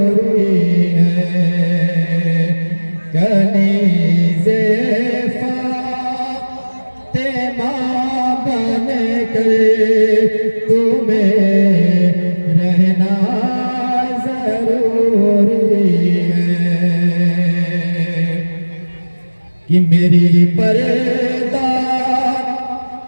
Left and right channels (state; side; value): inverted; both; correlation -1.00